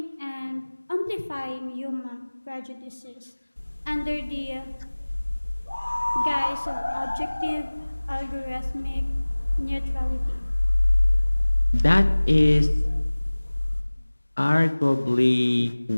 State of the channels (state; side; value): inverted; both; correlation -1.00